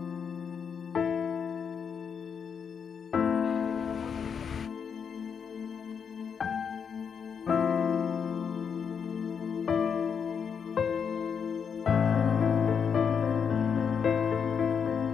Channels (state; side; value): quieter; right; 6.8 dB